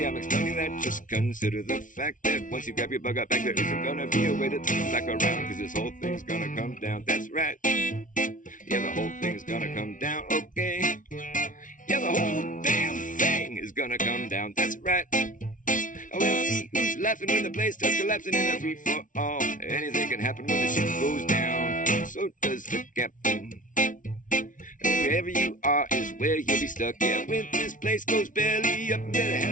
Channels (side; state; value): right; late; 0.38 ms